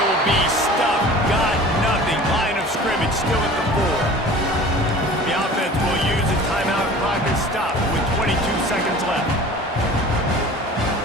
be stuffed. Got nothing. Line of scrimmage still at the 4. The offense will use a timeout. Clock is stopped with 22 seconds left.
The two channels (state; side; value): normal; both; correlation 0.42